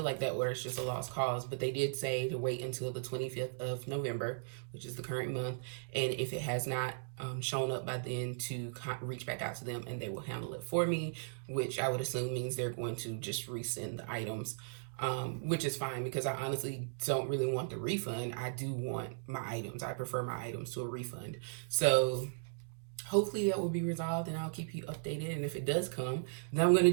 like that order is just a lost cause. But they did say to wait until the 25th of November, which is the current month, and if it has not shown up by then, to reach back out to them and they will handle it for me, which I would assume means they're going to just resend the items. Which is fine, because I honestly don't really want the refund. I do want my items. I prefer my items to a refund. So hopefully that will be resolved, and I'll keep you updated. And if it does come, then I'm going to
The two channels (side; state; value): left; silent; digital silence